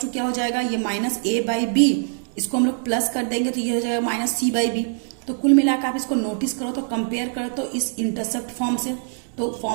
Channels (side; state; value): left; silent; 56 dB below the other